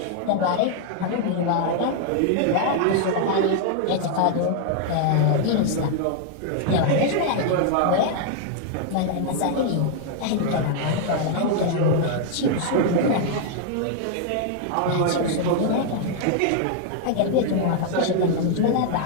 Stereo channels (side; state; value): both; different; correlation 0.00